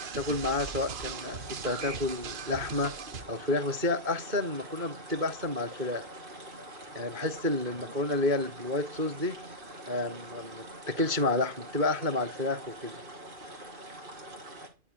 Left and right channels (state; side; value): late; left; 2.5 ms